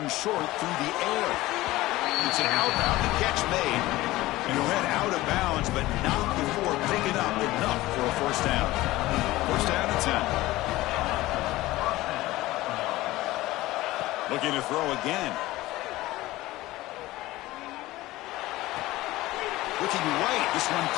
and short through the air. It's an outbound. The catch made. And he'll head out of bounds, but not before picking up enough for a first down. First down and 10. Looking to throw again. Looking right. This one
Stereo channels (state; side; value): quieter; right; 17.9 dB